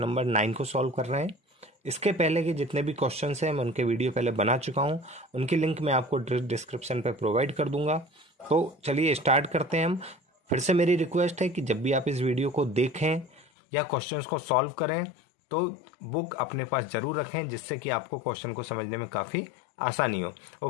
नंबर 9 को सॉल्व कर रहे हैं। इसके पहले के जितने भी क्वेश्चंस हैं मैं उनके वीडियो पहले बना चुका हूं, उनकी लिंक मैं आपको डिस्क्रिप्शन पे प्रोवाइड कर दूंगा। तो चलिए स्टार्ट करते हैं हम। फिर से मेरी रिक्वेस्ट है कि जब भी आप इस वीडियो को देखें या क्वेश्चन को सॉल्व करें तो बुक अपने पास जरूर रखें, जिससे कि आपको क्वेश्चन को समझने में काफ़ी आसानी हो।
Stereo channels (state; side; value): drops out; right; at 13.5 s